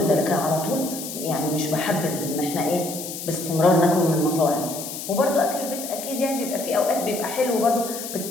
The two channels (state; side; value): noise; left; hiss, 8 dB below the sound